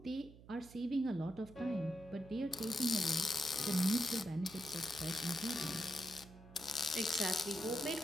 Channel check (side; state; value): right; noise; hum, 19 dB below the sound